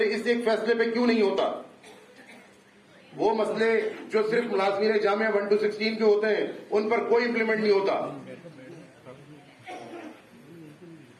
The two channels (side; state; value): both; identical; correlation 1.00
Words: اس ایک فیصلے پہ کیوں نہیں ہوتا؟ وہ مسئلے جو صرف ملازمین جامعہ 1 to 16 کے ہوتے ہیں ان پر کوئی امپلیمنٹ نہیں ہوتا.